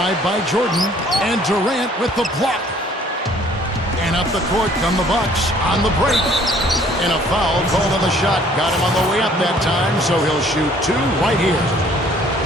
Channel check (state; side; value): normal; both; correlation 0.58